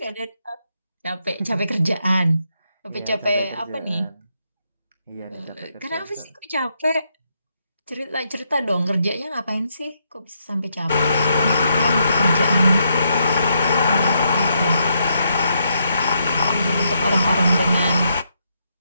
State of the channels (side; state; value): both; inverted; correlation -0.78